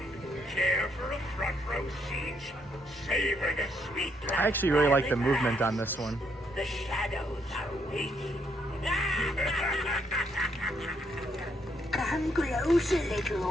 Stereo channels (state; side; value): normal; both; correlation 0.74